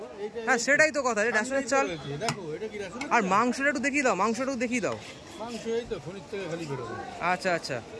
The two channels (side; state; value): both; identical; correlation 1.00